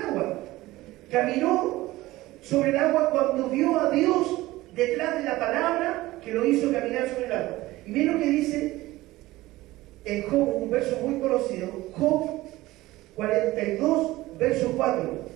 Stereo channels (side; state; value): left; quieter; 18.0 dB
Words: Caminó sobre el agua cuando vio a Dios detrás de la palabra que lo hizo caminar sobre el agua. Y miren lo que dice en Job, un verso muy conocido, Job 42, verso 4.